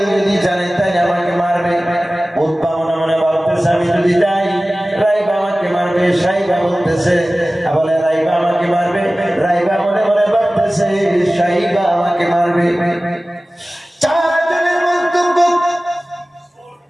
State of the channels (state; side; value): normal; both; correlation 0.97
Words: যদি জানে তাই আমাকে মারবে।